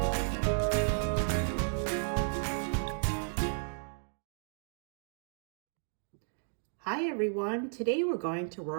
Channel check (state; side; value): silent; left; digital silence